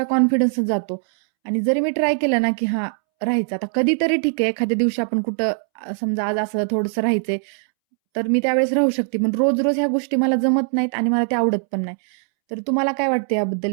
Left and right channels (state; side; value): silent; left; 65 dB below the other